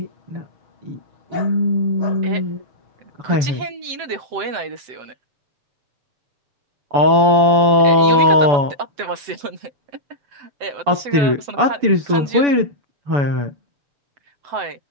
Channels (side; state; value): left; late; 7.8 ms